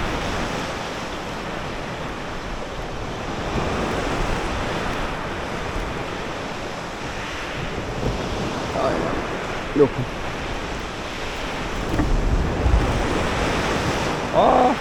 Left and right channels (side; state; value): both; identical; correlation 1.00